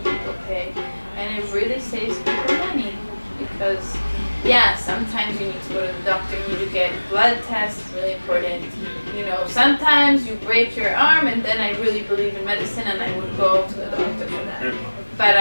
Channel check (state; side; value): inverted; both; correlation -1.00